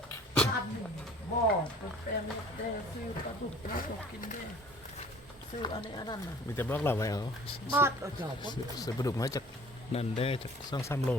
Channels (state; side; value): normal; both; correlation 0.50